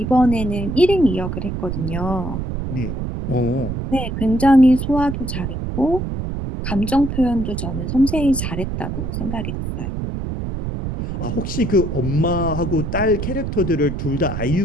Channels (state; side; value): noise; right; rumble, 4 dB below the sound